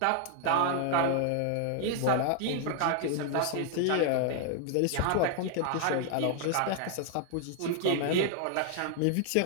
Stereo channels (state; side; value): different; both; correlation 0.00